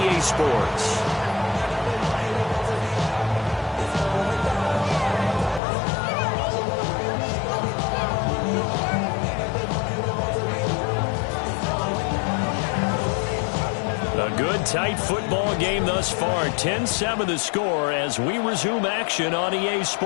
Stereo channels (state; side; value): drops out; right; at 5.6 s